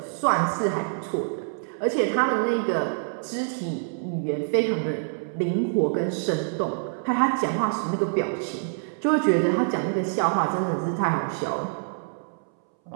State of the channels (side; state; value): left; silent; 61 dB below the other